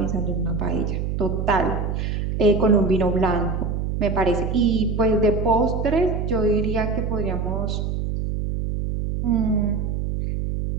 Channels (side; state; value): right; noise; hum, 2 dB below the sound